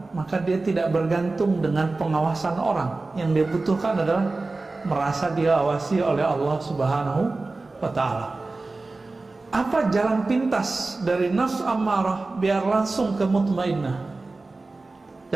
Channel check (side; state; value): left; quieter; 3.4 dB